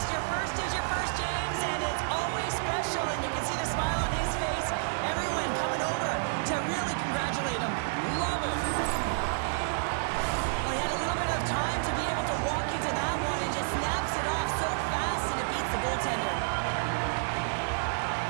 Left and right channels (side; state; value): left; silent; digital silence